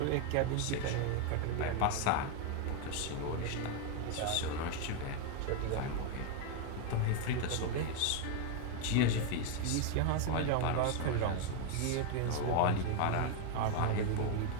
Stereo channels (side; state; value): both; different; correlation 0.01